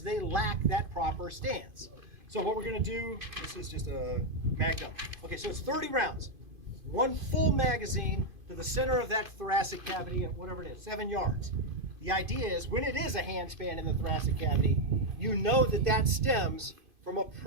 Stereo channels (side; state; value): left; late; 2.5 ms